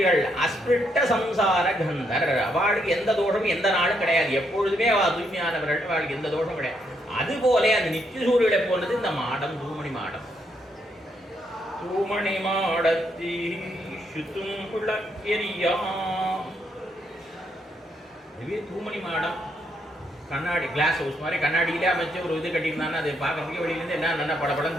அஸ்பிருட்ட சம்சார கந்தர். அவளுக்கு எந்த தோஷமும் எந்த நாளும் கிடையாது. எப்பொழுதுமே அவ தூய்மையானவர்கள், அவளுக்கு எந்த தோஷம் கிடையாது. அதுபோல அந்த நித்திய சூரியலை போனது இந்த மாடம், தூமணி மாடம். தூமணி மாடத்தி சுத்தும் புலக்கெரியா. இதுவே தூமணி மாடம். கண்ணாடி கிளாஸ் ஹவுஸ் மாதிரி கண்ணாடியிலே அமைச்சு ஒரு இது கட்டியிருந்தாங்கன்னா அது பார்க்கறதுக்கு வெளியிலேருந்து என்ன நல்ல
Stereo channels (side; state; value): both; normal; correlation 0.76